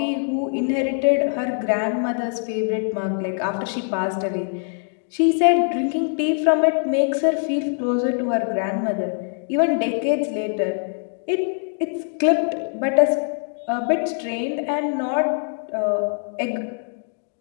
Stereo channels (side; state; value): right; silent; 63 dB below the other